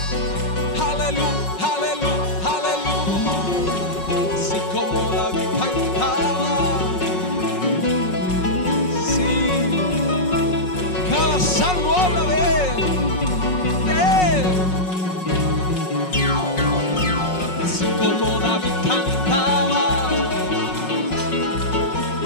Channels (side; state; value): right; late; 5.4 ms